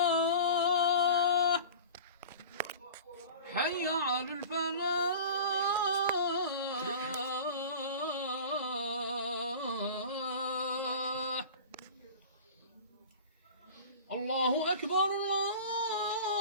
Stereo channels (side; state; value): both; inverted; correlation -0.38